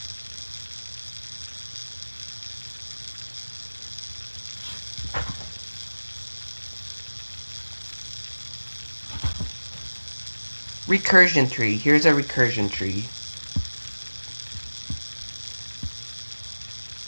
Recursion tree. Here's a recursion tree.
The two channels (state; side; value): inverted; both; correlation -1.00